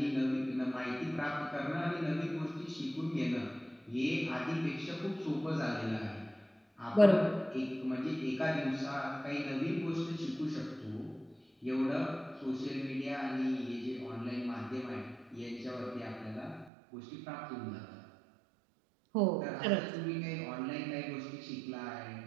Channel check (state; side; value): drops out; left; at 16.7 s